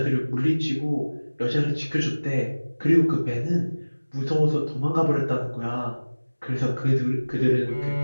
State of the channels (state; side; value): inverted; both; correlation -1.00